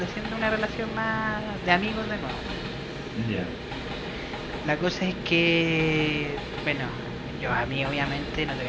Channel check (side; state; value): both; identical; correlation 1.00